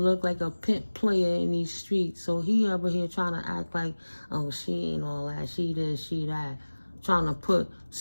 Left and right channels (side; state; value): both; inverted; correlation -1.00